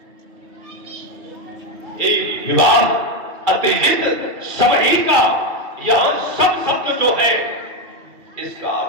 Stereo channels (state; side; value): late; left; 2.3 ms